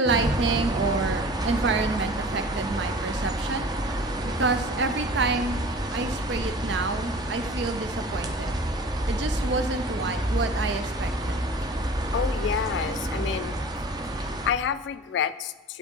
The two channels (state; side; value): normal; both; correlation 0.41